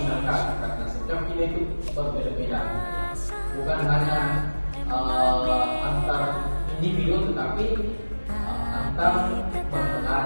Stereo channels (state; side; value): inverted; both; correlation -1.00